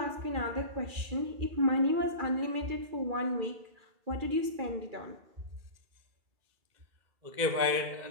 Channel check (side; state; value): left; late; 2.4 ms